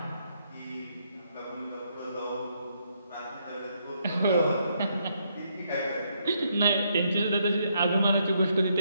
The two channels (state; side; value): inverted; both; correlation -0.75